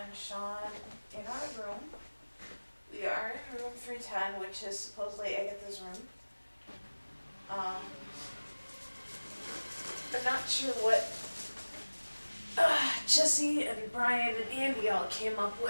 Sean in our room. We are in room 310, which is supposedly Agatha's room. I'm not sure what Jesse and Brian and Andy all came up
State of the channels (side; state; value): both; inverted; correlation -1.00